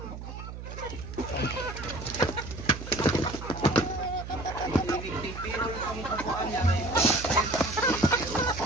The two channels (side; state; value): right; noise; hum, 10 dB below the sound